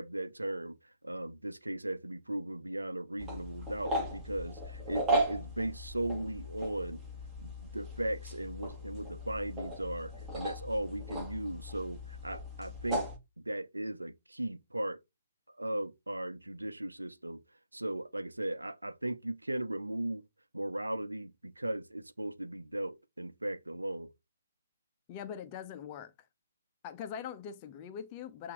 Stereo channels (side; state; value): both; inverted; correlation -0.77